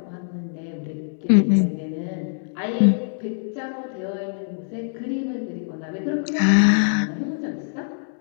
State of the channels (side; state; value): right; silent; digital silence